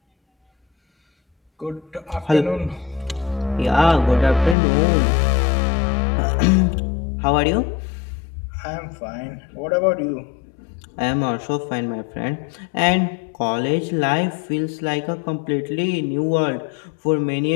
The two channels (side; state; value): right; drops out; at 4.5 s